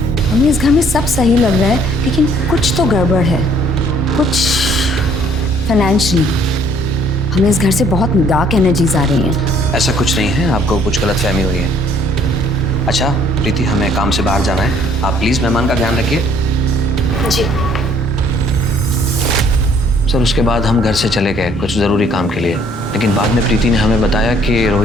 हमें इस घर में सब सही लग रहा है, लेकिन कुछ तो गड़बड़ है, कुछ फाइनेंशियली। हमें इस घर से बहुत डार्क एनर्जीज आ रही हैं। ऐसा कुछ नहीं है, आपको कुछ गलतफहमी हुई है। अच्छा प्रीति, हमें काम से बाहर जाना है, आप प्लीज मेहमान का ध्यान रखिए। जी सर, उसके बाद हम घर से चले गए कुछ ज़रूरी काम के लिए, लेकिन बाद में प्रीति ने हमें बताया कि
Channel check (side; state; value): both; normal; correlation 0.61